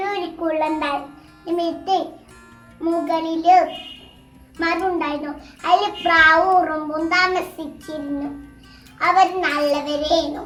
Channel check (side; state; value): both; identical; correlation 1.00